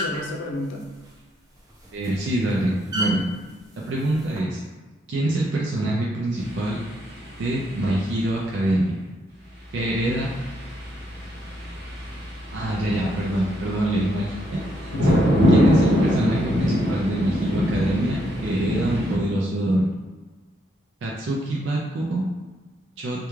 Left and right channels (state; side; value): normal; both; correlation 0.75